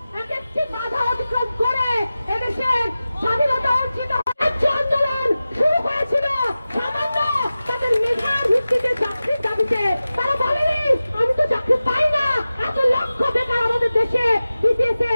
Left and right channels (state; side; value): inverted; both; correlation -0.95